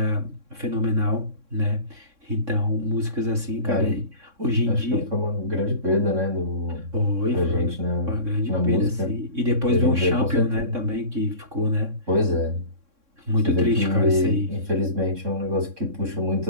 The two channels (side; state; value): left; late; 3.6 ms